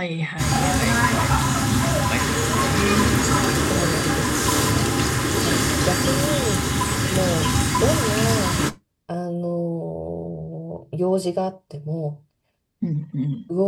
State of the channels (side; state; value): both; identical; correlation 1.00